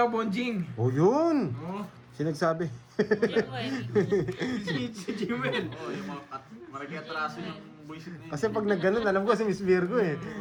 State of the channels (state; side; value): identical; both; correlation 1.00